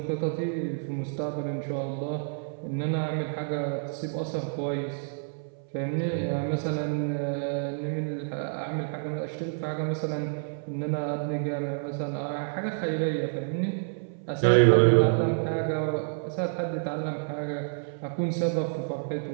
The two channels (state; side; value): silent; left; 59 dB below the other